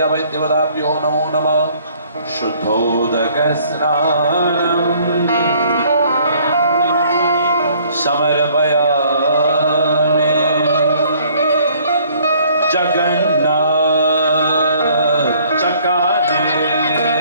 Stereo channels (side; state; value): both; inverted; correlation -0.59